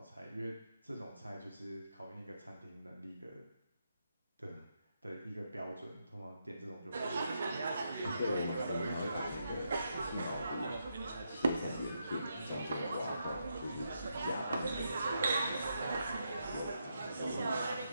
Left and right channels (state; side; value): inverted; both; correlation -0.81